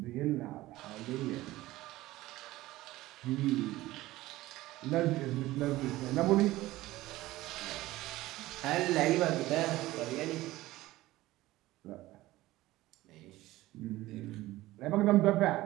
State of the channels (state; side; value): quieter; left; 17.3 dB